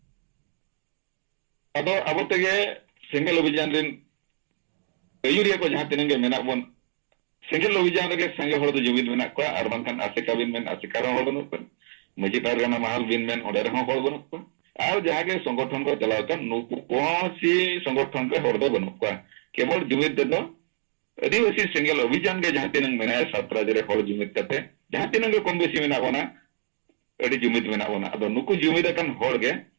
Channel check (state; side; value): silent; left; digital silence